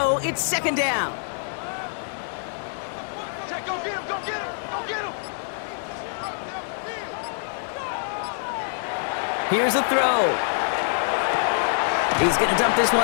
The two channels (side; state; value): right; silent; 62 dB below the other